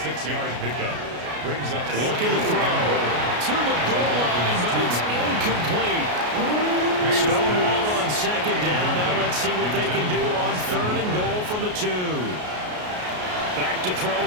pickup brings up looking to throw to the goal line, but it's incomplete. Stonewalled on 2nd down. Now let's see what they can do on 3rd and goal from the 2. Back to throw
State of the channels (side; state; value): left; late; 33 ms